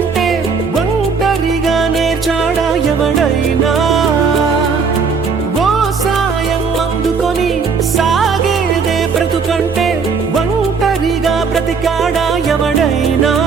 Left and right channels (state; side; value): quieter; left; 5.4 dB